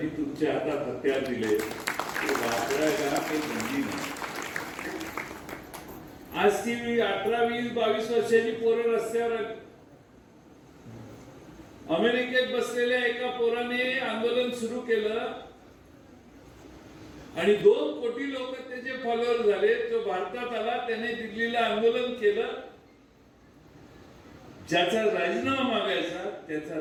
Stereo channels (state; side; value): identical; both; correlation 1.00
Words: तुमच्या हातात हत्यार दिले ते वापरायला काही बंदी नाही. आज ती 18, 20, 22 वर्षाची पोरं रस्त्यावर आली. अमेरिकेत बसलेल्या एका पोराने आंदोलन सुरू केलं आणि 2 कोटी लोक त्याचे फॉलोअर झाले. तो भारतात आला, त्याने दिल्लीला आंदोलन केलं. ज्याचा राजीनामा मागायचा त्याचा